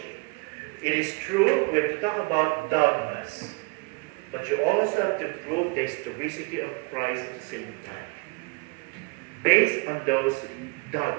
It is true, we have to talk about dogmas, but you also have to prove the historicity of Christ at the same time. Based on those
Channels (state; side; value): quieter; left; 30.0 dB